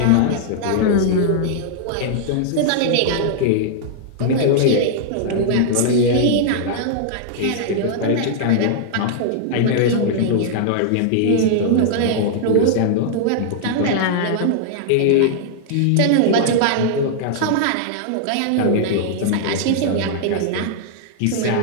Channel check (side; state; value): both; different; correlation -0.01